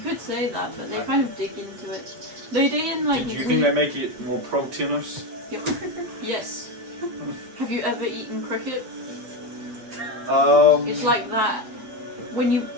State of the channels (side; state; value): left; late; 9.0 ms